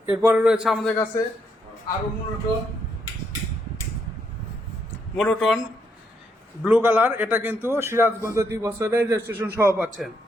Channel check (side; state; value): both; normal; correlation 0.76